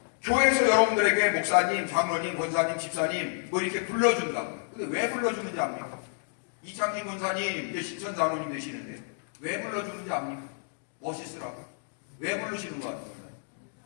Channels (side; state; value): right; silent; 58 dB below the other